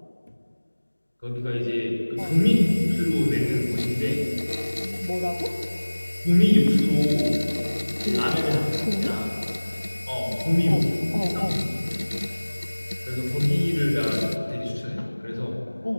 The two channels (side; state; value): both; inverted; correlation -1.00